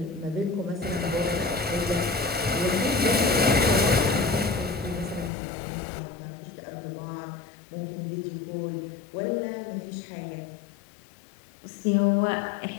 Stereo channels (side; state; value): right; drops out; at 5.3 s